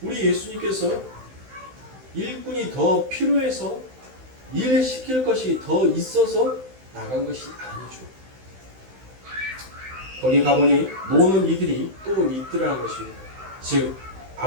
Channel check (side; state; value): left; late; 16 ms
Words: 우리 예수님께서 일꾼이 더 필요해서 일 시킬 것이 더 있어서 나간 것이 아니죠. 거기 가보니 노는 이들이 또 있더라는 것입니다. 즉